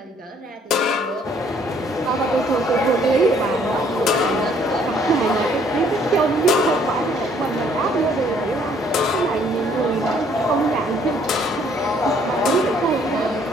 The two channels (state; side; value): normal; both; correlation 0.63